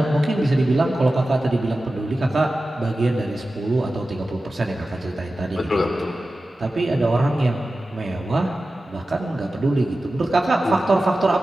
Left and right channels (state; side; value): normal; both; correlation 0.94